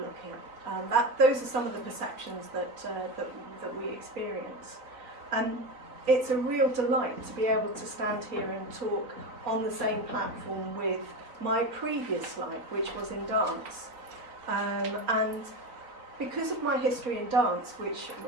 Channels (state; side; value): late; left; 3.9 ms